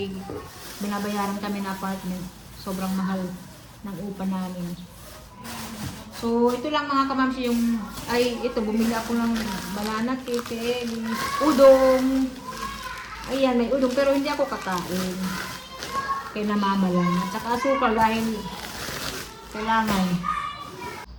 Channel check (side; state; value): both; identical; correlation 1.00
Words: binabayaran kami na apartment. Sobrang mahal ng upa namin. So, ito lang mga kamamsi ito, bumili ako ng banana cake, udong. Ayan, may udong, pero hindi ako kakain. Kaya namama lang. At saka asukal dahil kailangan.